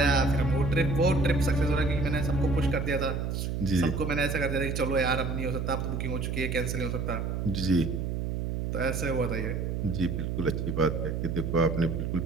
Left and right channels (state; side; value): noise; right; hum, 2 dB below the sound